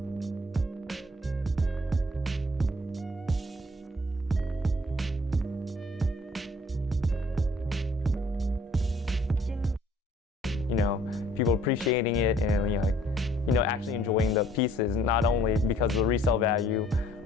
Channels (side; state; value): both; normal; correlation 0.59